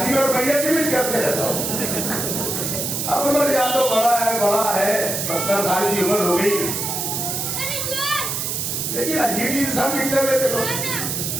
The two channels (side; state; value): right; noise; hiss, 2 dB below the sound